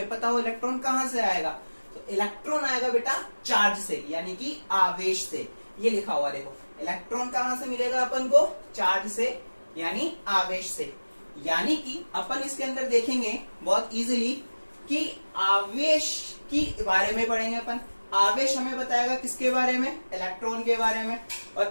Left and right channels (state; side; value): inverted; both; correlation -1.00